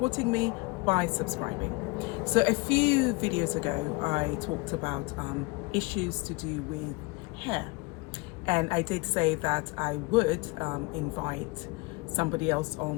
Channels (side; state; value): right; quieter; 25.0 dB